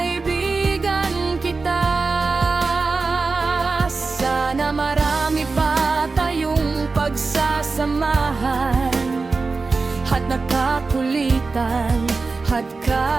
kita. Sana marami pa tayong pagsasamahan at nakakulitan at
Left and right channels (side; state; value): left; quieter; 4.1 dB